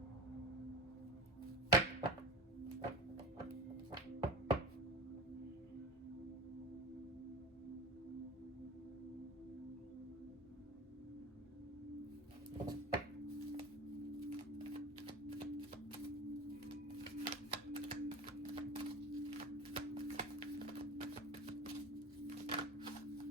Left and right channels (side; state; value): both; normal; correlation 0.32